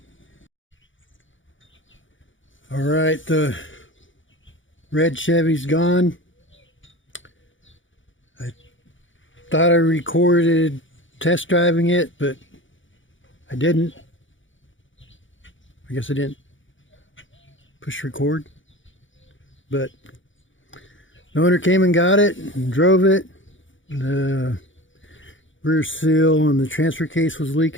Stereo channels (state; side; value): late; right; 0.56 ms